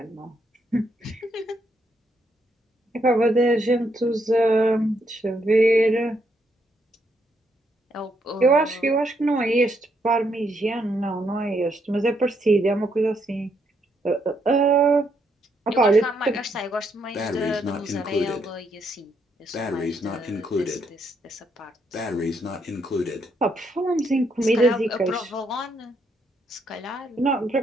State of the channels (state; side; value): normal; both; correlation 0.75